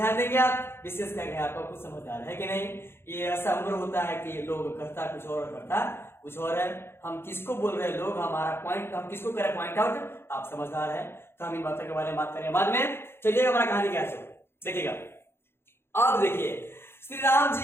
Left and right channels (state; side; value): late; right; 0.11 ms